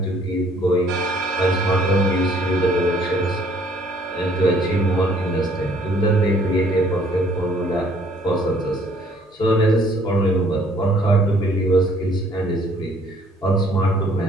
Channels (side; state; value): both; normal; correlation 0.61